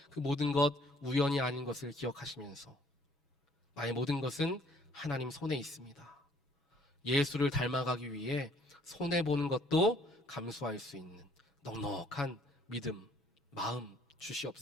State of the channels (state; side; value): normal; both; correlation 0.61